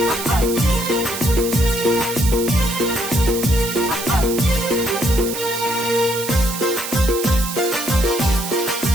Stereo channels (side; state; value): right; noise; hiss, 7 dB below the sound